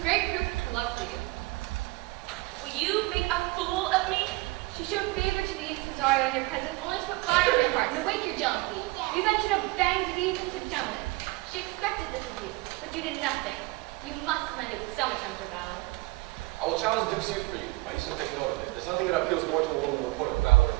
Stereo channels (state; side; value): quieter; left; 22.5 dB